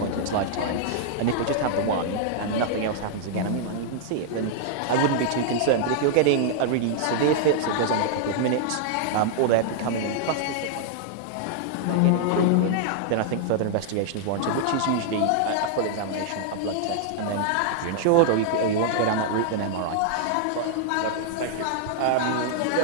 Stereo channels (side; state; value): both; different; correlation -0.01